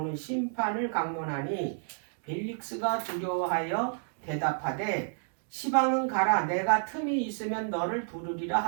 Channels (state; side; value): silent; left; digital silence